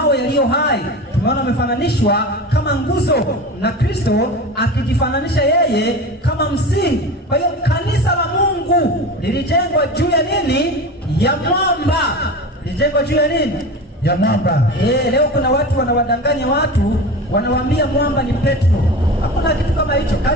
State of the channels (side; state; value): both; normal; correlation 0.30